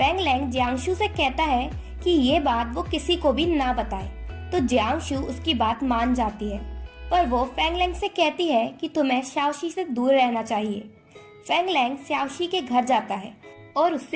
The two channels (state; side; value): identical; both; correlation 1.00